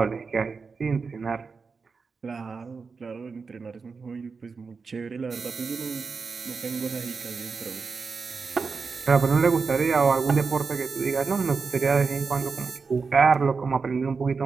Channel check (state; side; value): quieter; left; 4.9 dB